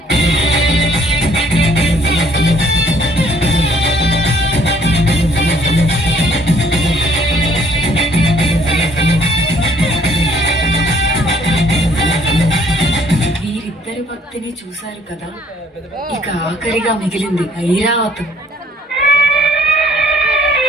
వీరిద్దరి భక్తిని చూశారు కదా, ఇక ఆఖరిగా మిగిలింది ఐరావతం.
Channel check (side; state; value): both; normal; correlation 0.62